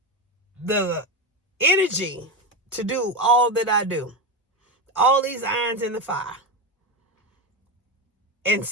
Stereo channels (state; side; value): normal; both; correlation 0.15